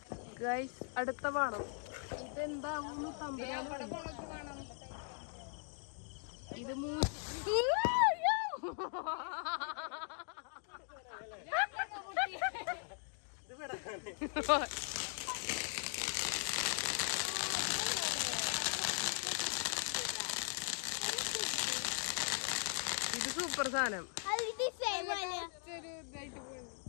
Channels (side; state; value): right; silent; 51 dB below the other